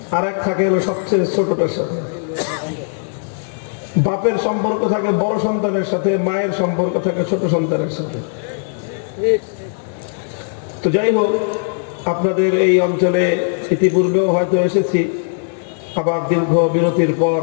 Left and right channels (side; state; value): right; silent; digital silence